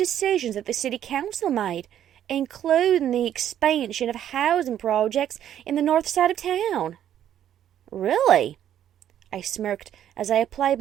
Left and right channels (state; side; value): quieter; left; 10.6 dB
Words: that the city council made, including the expansion of housing projects in the north side of town. Really? I smirked as I applied